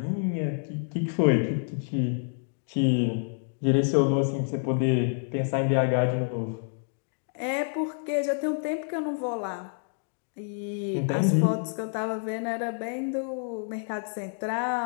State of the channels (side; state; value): right; silent; digital silence